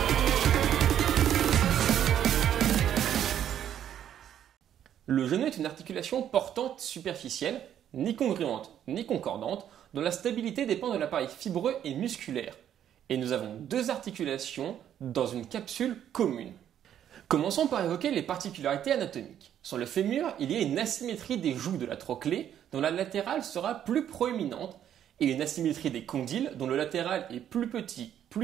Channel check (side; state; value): left; quieter; 10.2 dB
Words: Le genou est une articulation portante superficielle, ni congruente ni concordante, dont la stabilité dépend de l'appareil fibreux et musculaire. Et nous avons 2 articulations dans une capsule commune. Commençons par évoquer les particularités anatomiques. Sur le fémur, il y a une asymétrie des joues de la trochlée, dont la latérale sera plus proéminente, et une asymétrie des condyles, dont le latéral est plus petit,